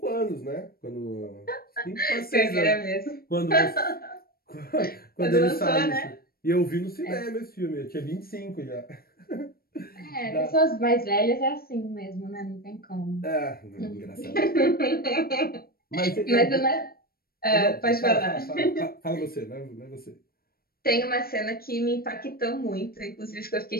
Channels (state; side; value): late; right; 0.44 ms